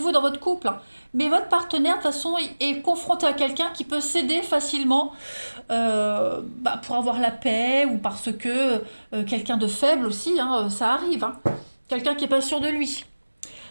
dans votre couple, hein, mais votre partenaire, de toute façon, est confronté à quelqu'un qui peut céder facilement pour avoir la paix ou parce que quelqu'un de faible aussi, hein, ça arrive. Hein. Quelqu'un qui n'est pas sûr de lui.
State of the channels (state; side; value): inverted; both; correlation -1.00